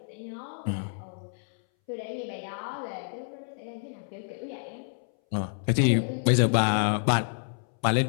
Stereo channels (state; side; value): silent; right; 59 dB below the other